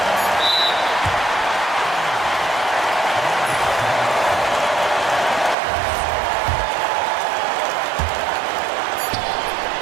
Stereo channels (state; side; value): drops out; left; at 5.6 s